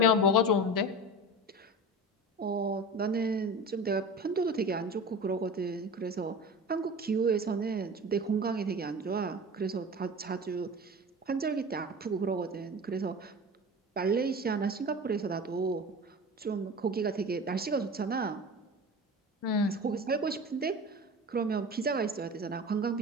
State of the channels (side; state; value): both; normal; correlation 0.32